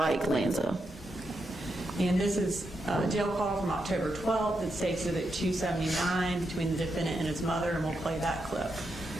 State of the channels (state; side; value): normal; both; correlation 0.84